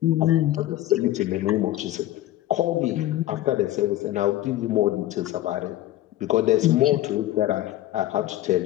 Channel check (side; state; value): right; quieter; 14.8 dB